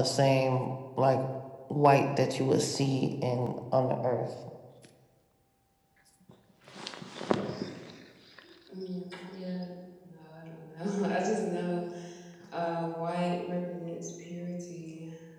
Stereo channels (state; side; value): identical; both; correlation 1.00